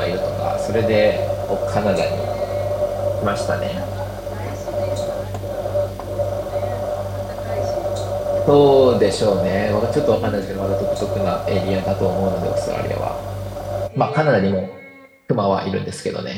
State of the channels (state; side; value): identical; both; correlation 1.00